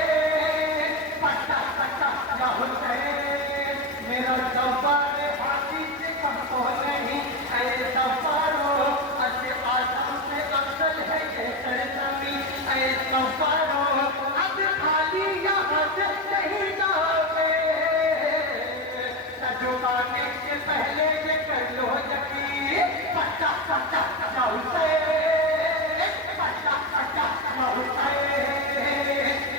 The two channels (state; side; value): normal; both; correlation 0.15